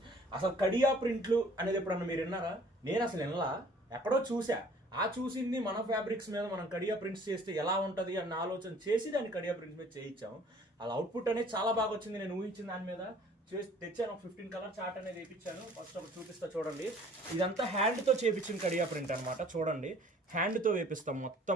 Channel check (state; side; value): normal; both; correlation 0.54